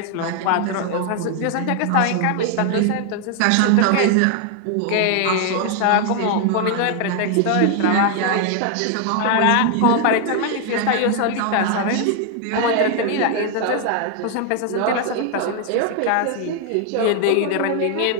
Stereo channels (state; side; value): different; both; correlation 0.00